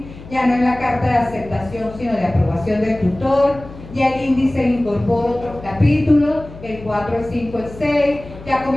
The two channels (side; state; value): left; noise; hum, 16 dB below the sound